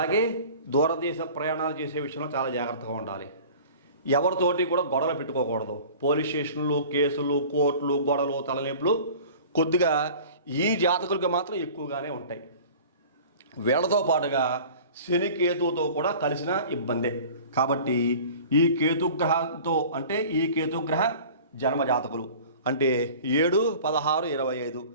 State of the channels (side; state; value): both; inverted; correlation -0.43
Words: దూరదేశ ప్రయాణాలు చేసే విషయంలో చాలా జాగ్రత్తగా ఉండాలి. ఎవరితోటి కూడా గొడవలు పెట్టుకోకూడదు. పోలీస్ స్టేషన్లు, కేసులు, కోర్టులు, గొడవలు, తలనొప్పులు కొద్దిగా ఈ జాతకులకు మాత్రం ఎక్కువగానే ఉంటాయి. వీళ్ళతో పాటుగా శని కేతువుతో కూడా కలిసిన ఇబ్బందే. కాబట్టి ఈ కేతుగ్రహంతో అంటే ఈ కేతుగ్రహ జన్మ జాతకులు అంటే 7, 16, 25